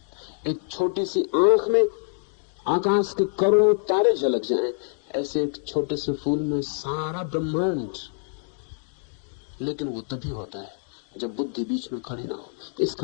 एक छोटी सी आंख में आकाश के करोड़ों तारे झलक जाएं, ऐसे एक छोटे से फूल में सारा ब्रह्मांड। लेकिन वो तभी होता है जब बुद्धि बीच में खड़ी ना हो।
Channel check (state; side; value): silent; right; digital silence